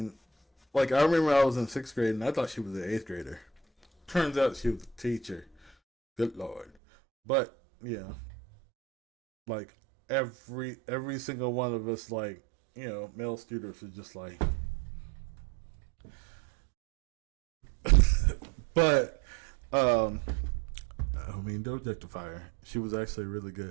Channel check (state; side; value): drops out; left; at 6.7 s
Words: like I remember I was in sixth grade and I thought she was an eighth grader. Turns out she was a teacher. Good lord. But yeah, like every single one of us, like male students, are just like. But um, I mean, don't objectify her. She was actually a really